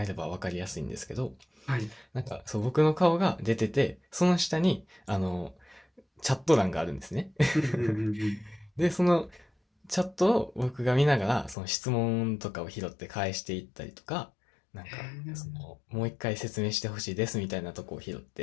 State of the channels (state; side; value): drops out; right; at 11.6 s